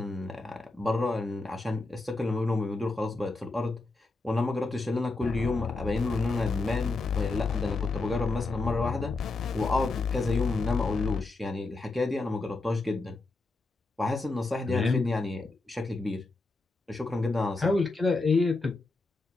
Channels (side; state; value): right; quieter; 3.3 dB